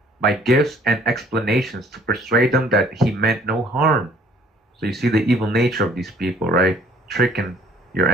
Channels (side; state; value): both; normal; correlation 0.57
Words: by gifts and explanations, to persuade them that he meant no harm. So you see the evil nature of these people, right? Tricking your